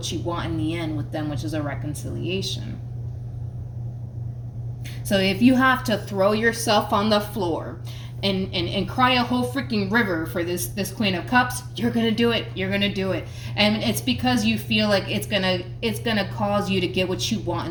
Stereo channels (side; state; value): both; identical; correlation 1.00